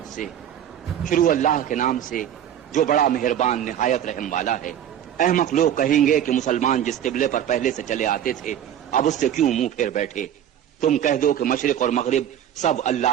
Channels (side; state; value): left; quieter; 10.2 dB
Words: سے، شروع اللہ کے نام سے جو بڑا مہربان نہایت رحم والا ہے۔ احمق لوگ کہیں گے کہ مسلمان جس قبلے پر پہلے سے چلے آتے تھے اب اس سے کیوں منہ پھیر بیٹھے؟ تم کہہ دو کہ مشرق اور مغرب سب